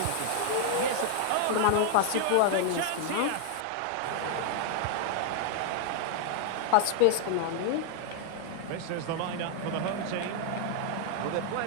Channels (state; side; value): different; both; correlation 0.00